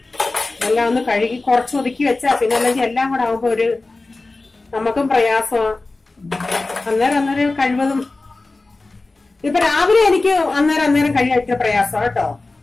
എല്ലാം ഒന്ന് കഴുകി കുറച്ച് ഒതുക്കി വെച്ചാ പിന്നെ അല്ലെങ്കിൽ എല്ലാം കൂടെ ആവുമ്പോ നമുക്കും പ്രയാസമാണ്. അന്നേരം കഴിവതും ഇപ്പൊ രാവിലെ എനിക്ക് അന്നേരം കഴിയാൻ പ്രയാസം കേട്ടോ.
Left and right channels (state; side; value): quieter; right; 3.3 dB